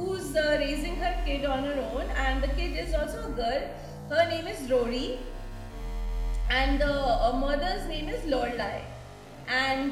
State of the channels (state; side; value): identical; both; correlation 1.00